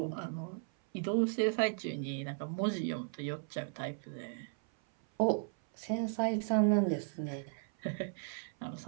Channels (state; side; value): silent; left; 54 dB below the other